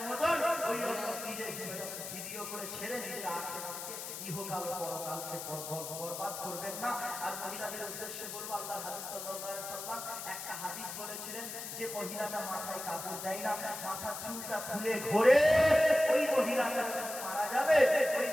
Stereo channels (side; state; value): left; noise; hiss, 8 dB below the sound